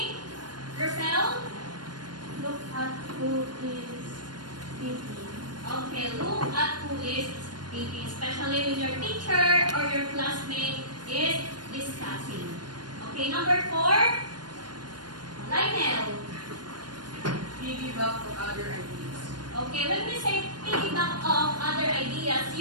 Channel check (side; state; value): left; late; 0.70 ms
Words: Rosel. Look at who is speaking. Okay, look at who is speaking, especially when your teacher or your classmate is discussing. Okay, number 4, Lionel. Piggyback to other ideas. Okay, when we say piggyback off other ideas,